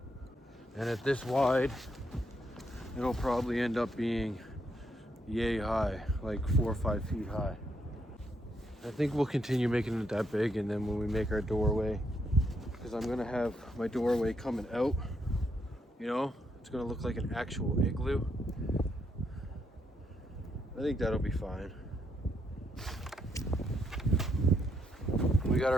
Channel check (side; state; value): both; normal; correlation 0.77